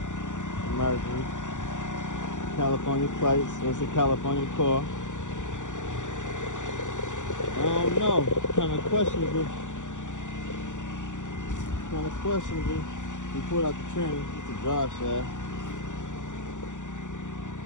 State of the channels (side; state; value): right; late; 0.86 ms